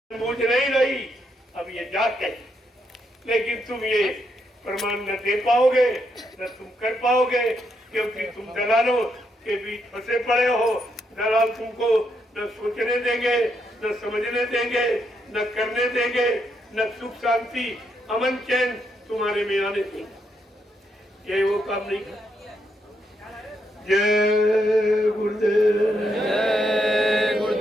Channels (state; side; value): normal; both; correlation 0.78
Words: मुझ नहीं रही, अब ये जाग गई, लेकिन तुम ये प्रमाण न दे पाओगे, न तुम कर पाओगे, क्योंकि तुम दलालों के बीच फंसे पड़े हो। दलाल तुमको न सोचने देंगे, न समझने देंगे, न करने देंगे, न सुख शांति अमन चैन तुम्हारे में आने देंगे। ये वो काम नहीं कर। जय गुरुदेव, जय